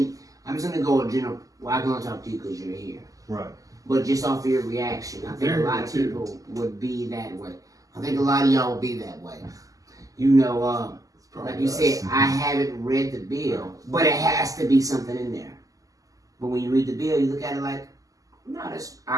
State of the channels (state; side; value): late; left; 0.17 ms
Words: I'm just gonna go with general. Well, I'm gonna talk to you because you're here. Right. But just off of your reaction, I think a lot of people would be that way. I think a lot of y'all would be that way. You know, like you said, I haven't read the bill, but it has to be something in there. But when you read the bill, you look at it like, no, that's